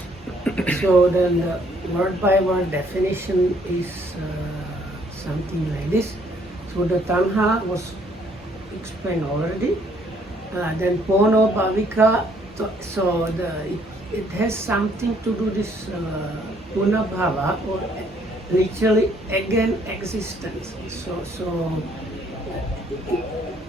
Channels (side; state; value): both; normal; correlation 0.65